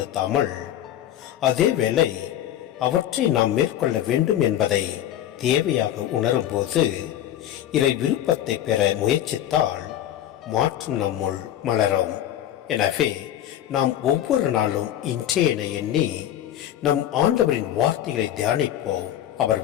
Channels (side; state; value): right; quieter; 11.7 dB